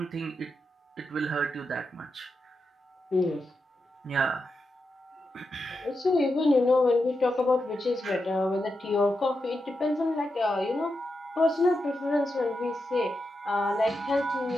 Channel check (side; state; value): both; normal; correlation 0.87